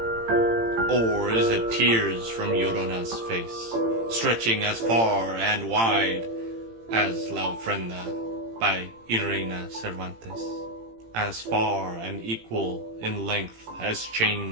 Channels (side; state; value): left; late; 18 ms